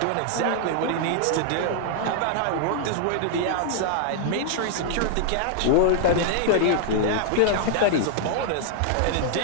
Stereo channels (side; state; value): both; different; correlation 0.00